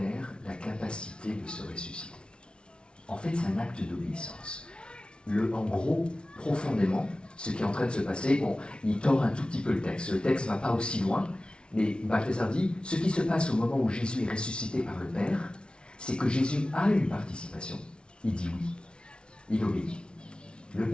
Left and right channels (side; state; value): right; late; 0.057 ms